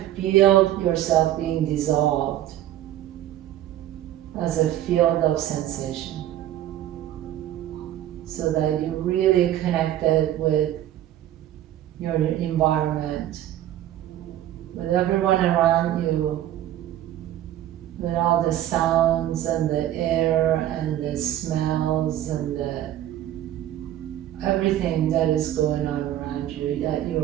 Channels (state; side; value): quieter; left; 12.7 dB